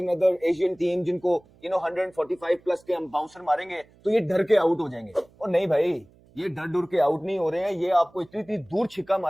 एशियन टीम जिनको 145 प्लस के हम बाउंसर मारेंगे तो ये डर के आउट हो जाएंगे। और नहीं भाई, ये डर के आउट नहीं हो रहे हैं, ये आपको इतनी दूर छिक्का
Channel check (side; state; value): right; noise; hum, 29 dB below the sound